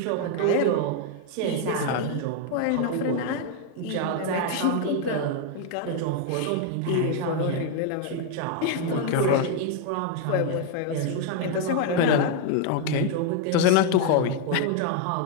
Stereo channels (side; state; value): both; different; correlation 0.01